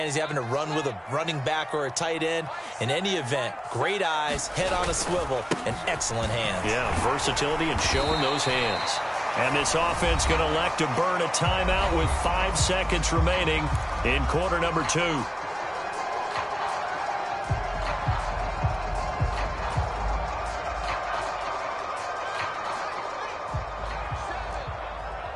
Is he having to run with a running back or a tight end? In any event, great eyes, head on a swivel, and excellent hands. Yeah, versatility and showing those hands. And this offense going to elect to burn a timeout with 5 seconds remaining in quarter number 2.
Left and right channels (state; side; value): identical; both; correlation 1.00